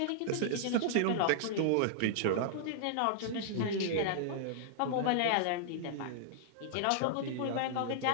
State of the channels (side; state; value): both; different; correlation -0.01